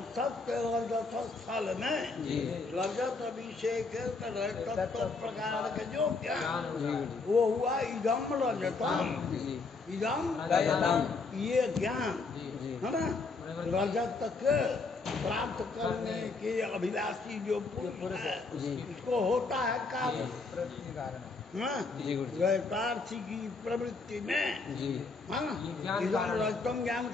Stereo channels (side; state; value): right; quieter; 4.1 dB